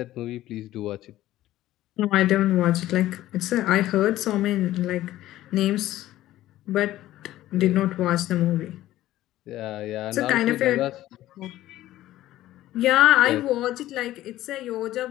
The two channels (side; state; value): right; quieter; 14.7 dB